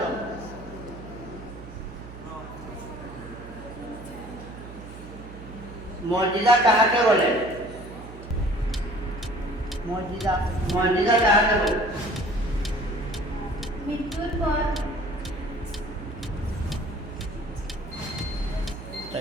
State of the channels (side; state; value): right; noise; hum, 14 dB below the sound